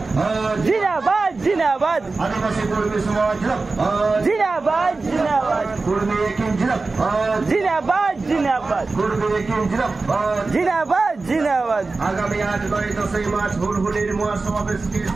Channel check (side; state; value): left; quieter; 3.8 dB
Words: জিন্দাবাদ জিন্দাবাদ আদিবাসী কর্মী সমাজ জিন্দাবাদ জিন্দাবাদ কর্মী একিন জিন্দাবাদ জিন্দাবাদ কর্মী একিন জিন্দাবাদ জিন্দাবাদ আগামী 8-9-10 মার্চ হুলহুলির মহাসমাবেশকে